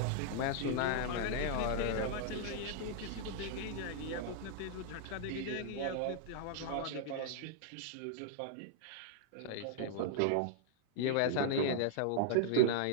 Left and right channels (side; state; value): both; different; correlation -0.01